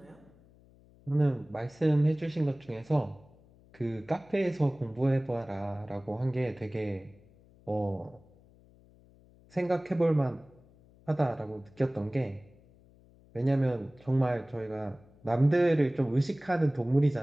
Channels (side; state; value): left; noise; hum, 27 dB below the sound